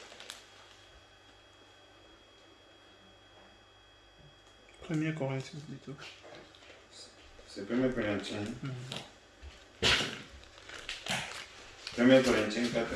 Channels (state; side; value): identical; both; correlation 1.00